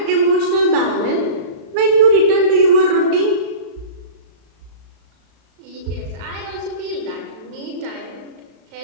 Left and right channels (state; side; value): late; left; 35 ms